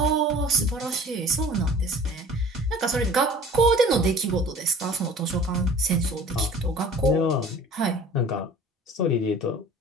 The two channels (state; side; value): normal; both; correlation 0.46